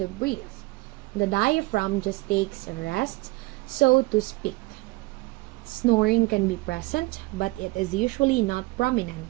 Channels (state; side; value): quieter; left; 23.0 dB